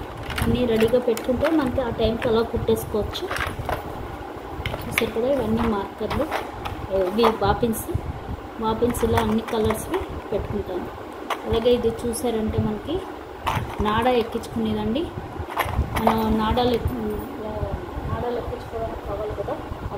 అన్నీ రెడీగా పెట్టుకుంటే మనకి ఆ టైంకి అలా కుట్టేసుకోవచ్చు. చూసారు కదా, ఇవన్నీ మార్కర్లు, ఇవి బాపిన్స్ ఇలా అన్ని కలర్స్వి పెట్టుకుంటాను. అలాగే ఇది చూసారంటే మనకి నాడా ఎక్కించుకునేదండి. మనం నాడాలు ఎక్కించుకోవడానికి కావాలి కదా,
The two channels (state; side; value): identical; both; correlation 1.00